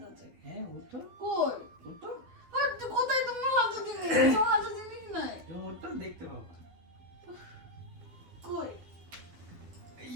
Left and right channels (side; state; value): left; late; 13 ms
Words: আছে? হ্যাঁ, ওঠো, কই ওঠো, আর কোথায় তোমার হাতে জিনিস? তোমার হাতে জিনিস নাই। তুমি ওঠো, দেখতে পাবো। কই